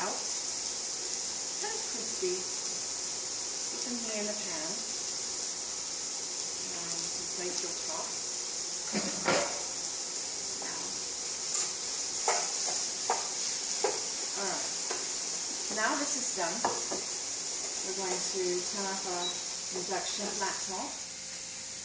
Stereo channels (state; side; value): identical; both; correlation 1.00